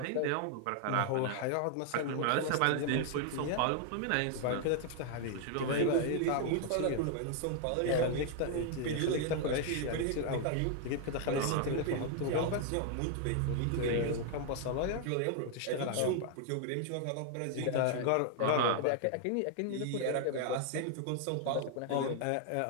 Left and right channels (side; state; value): both; different; correlation 0.00